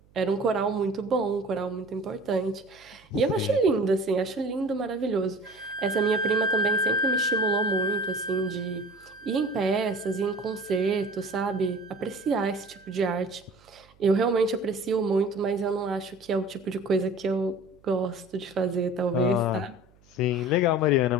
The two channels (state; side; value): noise; right; hum, 30 dB below the sound